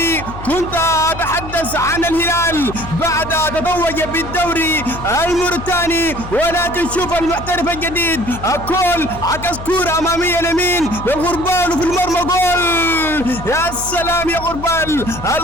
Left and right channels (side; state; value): left; noise; hum, 11 dB below the sound